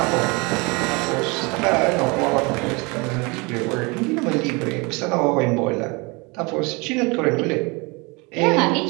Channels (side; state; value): left; quieter; 27.7 dB